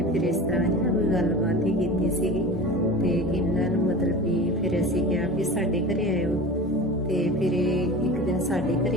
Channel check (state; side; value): normal; both; correlation 0.34